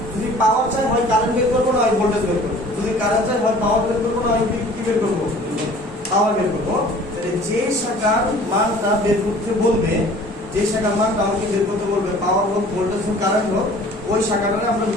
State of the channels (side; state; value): both; normal; correlation 0.49